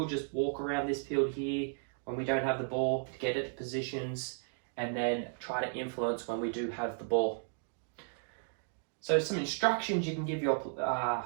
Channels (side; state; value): left; silent; digital silence